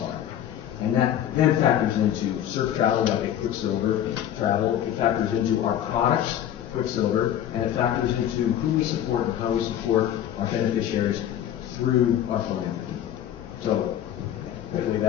And that then factors into surf travel, like Quiksilver travel. It factors into our products, Quiksilver, and it factors into who we support and how we support our beneficiaries through our philanthropy. So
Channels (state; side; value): quieter; right; 10.9 dB